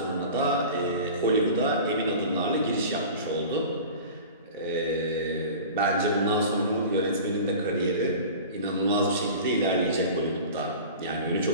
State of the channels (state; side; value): inverted; both; correlation -0.38